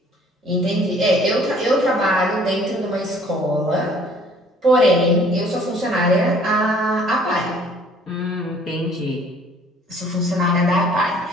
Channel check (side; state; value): both; normal; correlation 0.56